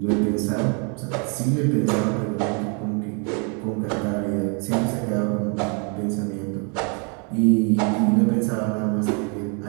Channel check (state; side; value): quieter; left; 36.0 dB